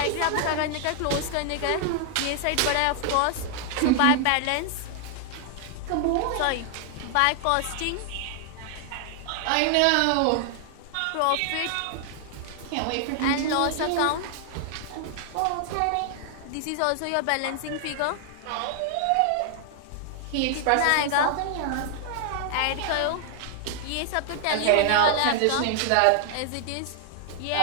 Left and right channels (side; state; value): both; different; correlation 0.00